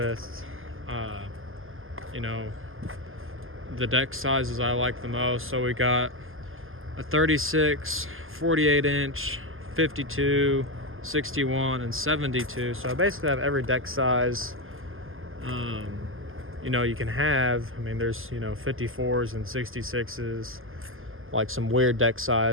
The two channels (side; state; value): left; late; 0.59 ms